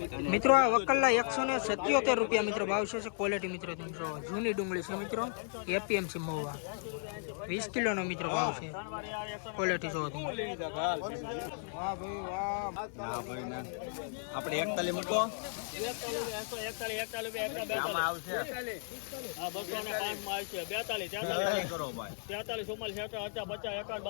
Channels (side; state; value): right; silent; 54 dB below the other